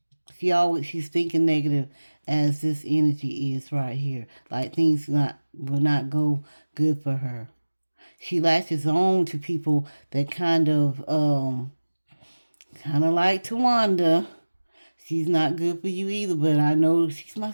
She's thinking negative as this energy is right here. Like things will not go good for her. She latches on to people that kind of like Tawanda. She's not good for you either, but I know she's my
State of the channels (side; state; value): both; inverted; correlation -1.00